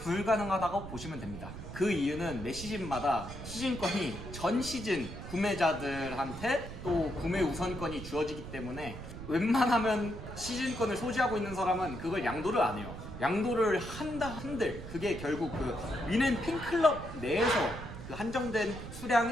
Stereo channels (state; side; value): noise; right; rumble, 10 dB below the sound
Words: 보시면 됩니다. 그 이유는 매 시즌마다 시즌권이 전 시즌 구매자들한테 또 구매 우선권이 주어지기 때문에 웬만하면 시즌권을 소지하고 있는 사람은 그걸 양도를 안 해요. 양도를 한다 한들 그게 결국 그 뮌헨 팬클럽 내에서 그 한정된